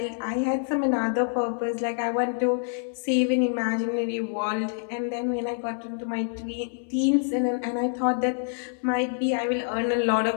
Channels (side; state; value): right; silent; 61 dB below the other